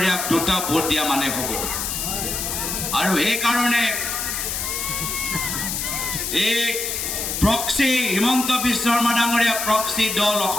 2টা ভোট দিয়া মানে হ'ব। আৰু সেইকাৰণে এই প্ৰক্সি হিমন্ত বিশ্ব শৰ্মা ডাঙৰীয়া প্ৰক্সি দল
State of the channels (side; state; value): left; noise; hiss, 3 dB below the sound